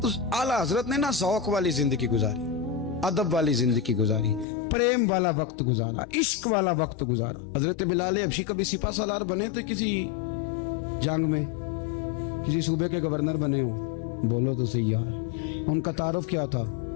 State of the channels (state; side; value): drops out; right; at 4.5 s